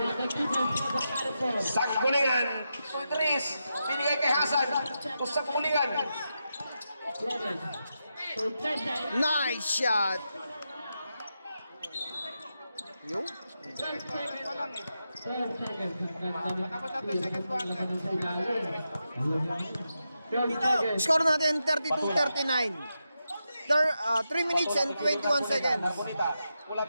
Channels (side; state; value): both; inverted; correlation -0.87